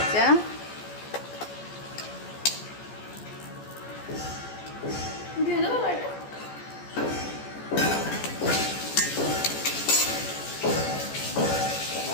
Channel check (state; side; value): late; right; 14 ms